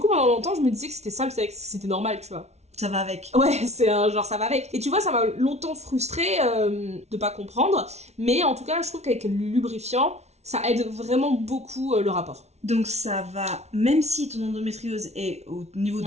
pendant longtemps, je me disais que c'était ça, que c'était normal, tu vois. Ça va avec. Ouais, c'est un genre ça va avec. Et tu vois, ça m'a longtemps frustrée de pas comprendre. Mais en tout cas, je trouve qu'avec le lubrifiant, ça aide vraiment beaucoup le rapport. Donc ça va, même si ton endométriose est au niveau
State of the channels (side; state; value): left; late; 0.32 ms